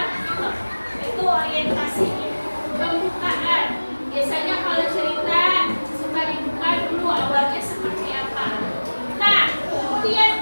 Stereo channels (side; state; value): both; inverted; correlation -1.00